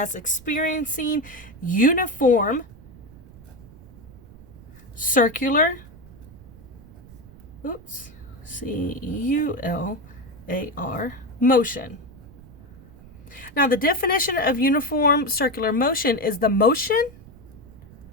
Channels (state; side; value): noise; right; rumble, 20 dB below the sound